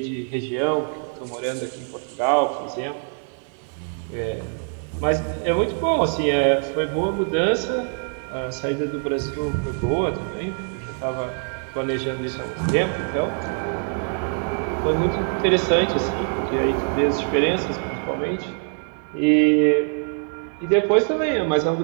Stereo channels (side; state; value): left; silent; 55 dB below the other